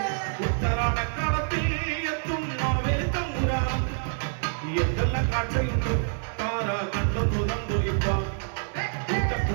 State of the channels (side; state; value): left; silent; digital silence